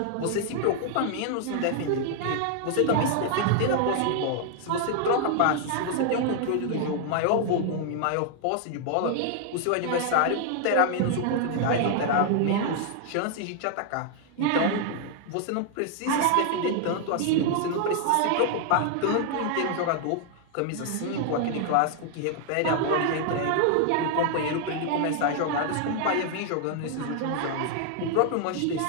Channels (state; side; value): different; both; correlation 0.00